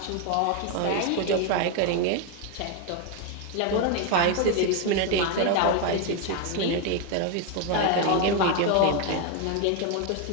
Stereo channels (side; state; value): both; different; correlation 0.01